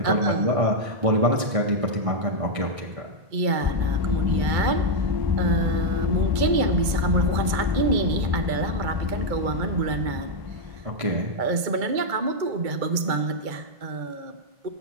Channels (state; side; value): late; left; 2.2 ms